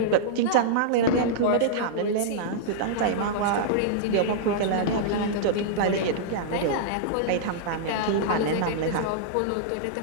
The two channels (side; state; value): both; different; correlation -0.02